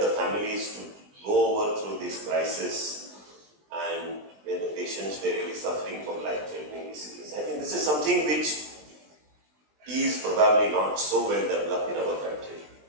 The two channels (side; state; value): left; late; 20 ms